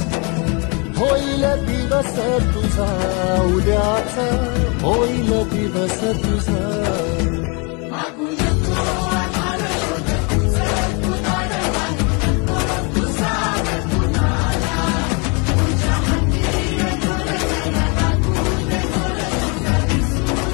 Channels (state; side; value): quieter; right; 32.5 dB